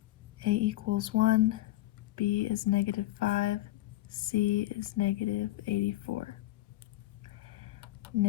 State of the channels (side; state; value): right; quieter; 16.6 dB